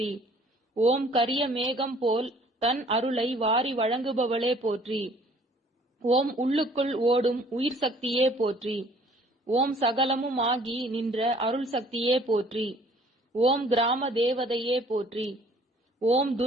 ஓம் கரிய மேகம் போல் தன் அருளை வாரி வழங்குபவளே போற்றி. ஓம் உள்ளுக்குள் ஓடும் உயிர் சக்தியே போற்றி. ஓம் சகலமும் ஆகி நின்ற அருள் சக்தியே போற்றி. ஓம் கிராம தேவதையே போற்றி. ஓம்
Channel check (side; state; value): both; normal; correlation 0.56